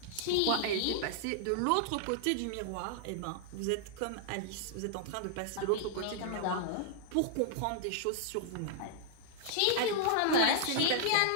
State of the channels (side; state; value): both; different; correlation -0.01